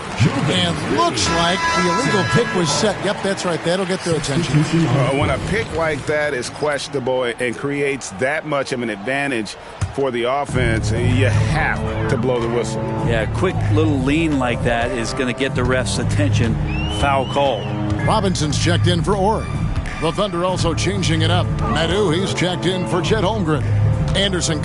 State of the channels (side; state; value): both; identical; correlation 1.00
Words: And looks like the illegal pick was set. Yep, that's right. That'll get their attention. When a pick like that is questionable and creates that much of an advantage for the offense, you have to blow the whistle. Yeah, a quick little lean like that is going to get the ref's attention. Foul call. Robinson's checked in for Ori. The Thunder also changing it up. Nadu, he's checked in for Chet Holmgren. Anderson